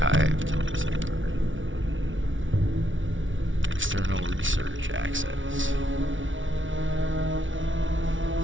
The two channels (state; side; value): late; left; 0.56 ms